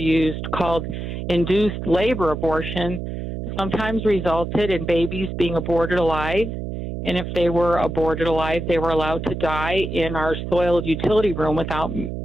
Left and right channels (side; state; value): right; noise; hum, 6 dB below the sound